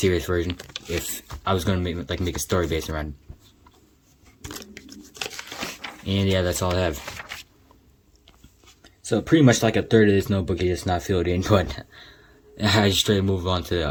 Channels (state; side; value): identical; both; correlation 1.00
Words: version. If I was gonna make a story based around it. And yeah, that's all I have. So pretty much like a third of this notebook is just not filled in, but I just straight move on